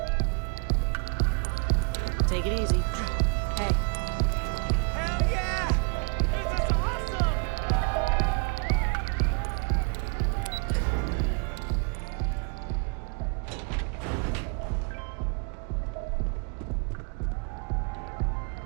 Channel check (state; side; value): quieter; left; 37.6 dB